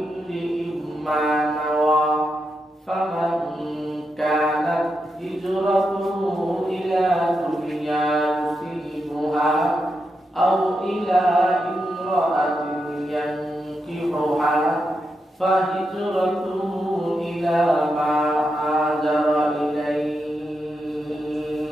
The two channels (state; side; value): normal; both; correlation 0.86